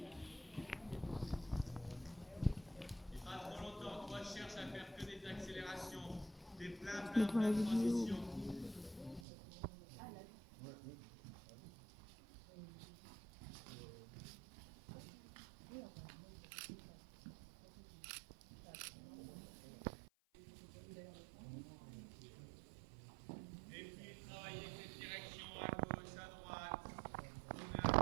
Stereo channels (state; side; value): drops out; left; at 9.2 s